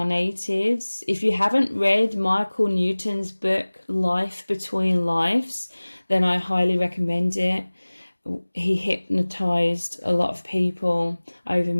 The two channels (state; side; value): inverted; both; correlation -1.00